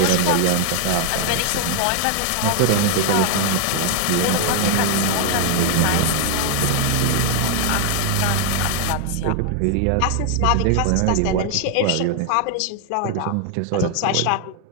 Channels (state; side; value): different; both; correlation 0.00